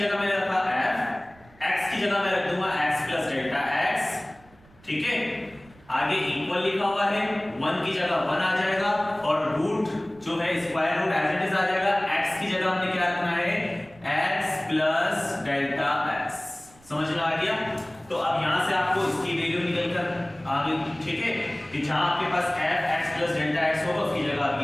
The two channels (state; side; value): noise; right; rumble, 27 dB below the sound